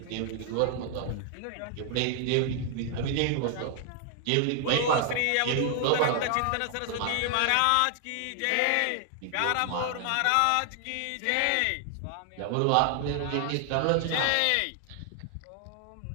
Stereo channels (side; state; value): both; different; correlation 0.00